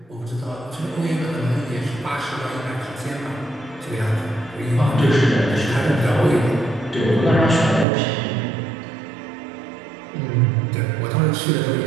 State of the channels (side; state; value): left; drops out; at 7.9 s